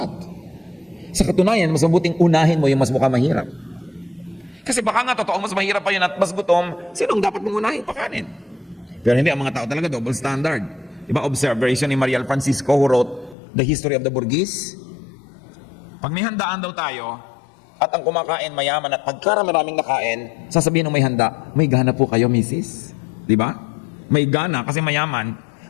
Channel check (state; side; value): drops out; right; at 13.4 s